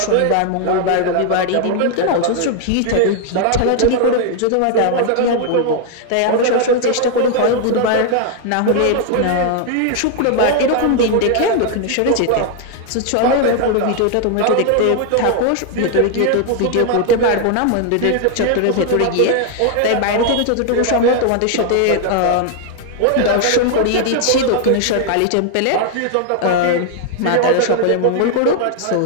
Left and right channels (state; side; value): different; both; correlation 0.00